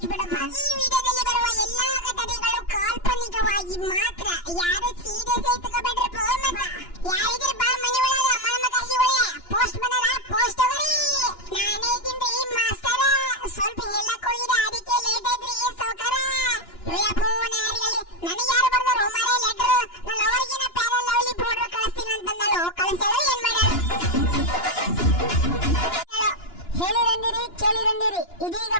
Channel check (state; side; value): late; right; 2.9 ms